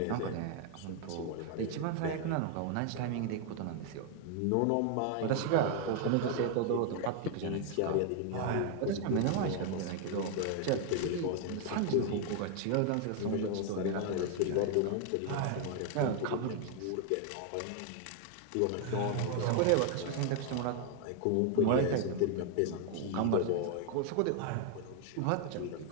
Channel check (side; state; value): both; different; correlation 0.00